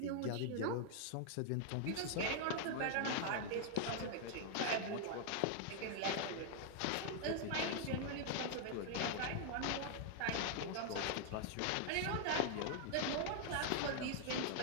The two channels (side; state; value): both; different; correlation 0.00